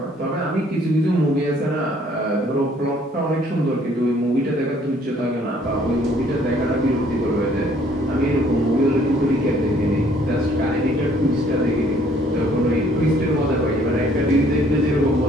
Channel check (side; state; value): both; normal; correlation 0.61